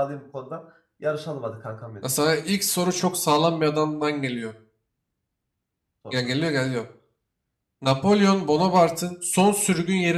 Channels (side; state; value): both; identical; correlation 1.00